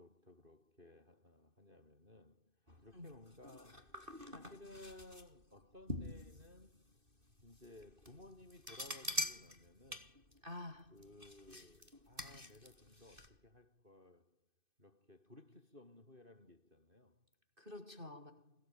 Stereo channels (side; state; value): left; late; 2.6 ms